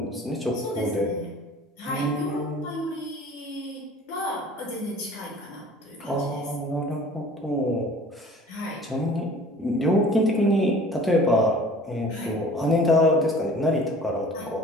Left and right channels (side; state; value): both; normal; correlation 0.47